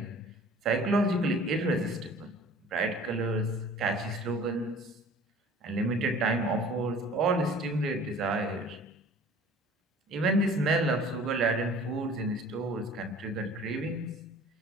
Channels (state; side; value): normal; both; correlation 0.47